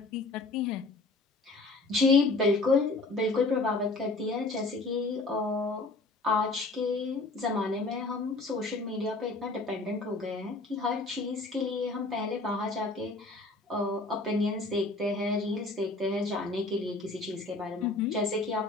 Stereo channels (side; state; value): right; quieter; 3.3 dB